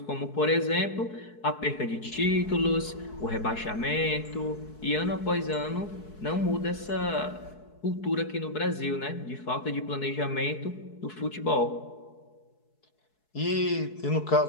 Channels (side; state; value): right; late; 4.7 ms